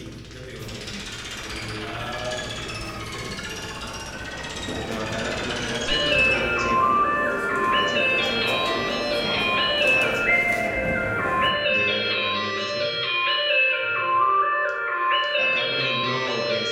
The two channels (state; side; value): identical; both; correlation 1.00